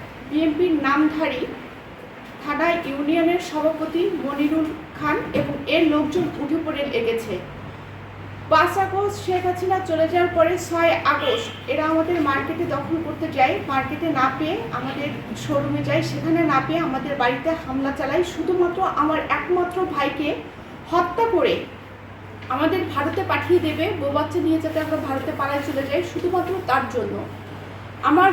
বিএনপির নামধারী থানা ইউনিয়নের সভাপতি মনিরুল খান এবং এর লোকজন উঠে পড়ে লেগেছে। 5 আগস্ট শেখ হাসিনা চলে যাওয়ার পরে 6 আগস্ট এরা আমাদের মার্কেটে দখল করতে যায়। মার্কেটে না পেয়ে আমাদের শোরুমে যায়, সেখানে না পেয়ে আমাদের বাড়িতে হামলা চালায়। শুধুমাত্র আমার একমাত্র ভাইকে হত্যা করে আমাদের ভারতে পাঠিয়ে দেবে, বউ বাচ্চা নিয়ে যাতে আমরা ভারতে পালায় চলে যাই, শুধুমাত্র তার জন্য। আমার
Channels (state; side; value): identical; both; correlation 1.00